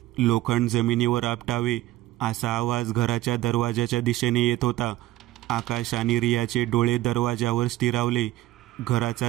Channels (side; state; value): left; quieter; 15.8 dB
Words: लोखंड जमिनीवर आपटावे असा आवाज घराच्या दरवाजाच्या दिशेने येत होता. आकाश आणि रियाचे डोळे दरवाजावर स्थिरावले.